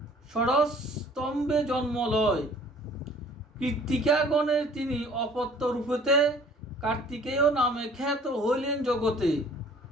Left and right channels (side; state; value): both; normal; correlation 0.53